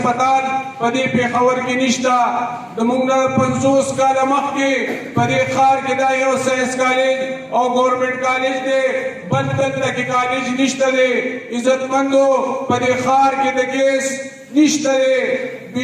په دې پېښور کې نشته. زموږ نه 50 کاله مخکې په دې ښار کې دا یو ساینس کالج او ګورنمنټ کالج دی، بل دلته کې کالج نشته دی. عزتمندو په دې ښار کې د ګیس نشته دی،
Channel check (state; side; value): identical; both; correlation 1.00